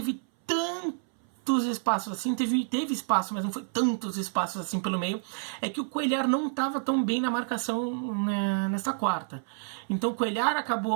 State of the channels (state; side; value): silent; left; 59 dB below the other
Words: tantos espaços assim, teve espaço, mas não foi tantos espaços assim pelo meio. É que o Cuéllar não estava tão bem na marcação nessa quarta. Então o Cuéllar